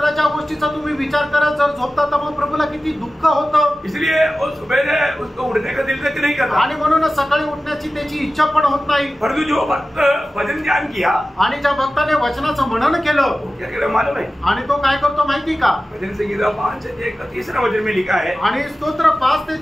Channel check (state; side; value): normal; both; correlation 0.95